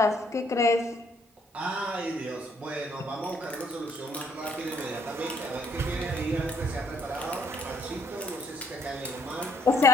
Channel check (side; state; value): both; normal; correlation 0.67